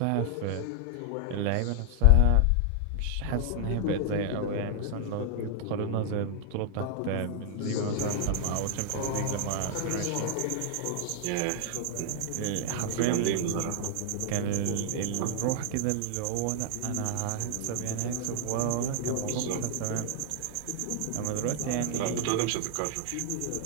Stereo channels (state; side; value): different; both; correlation 0.00